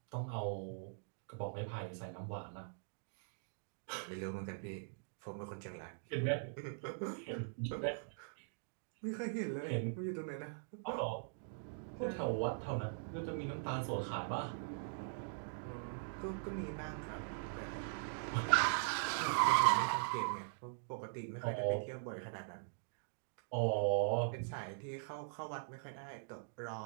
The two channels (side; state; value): left; silent; digital silence